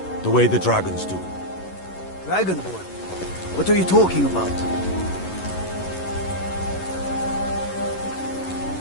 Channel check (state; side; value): late; right; 11 ms